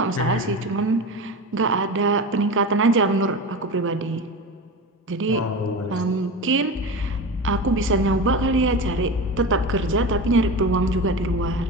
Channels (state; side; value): normal; both; correlation 0.26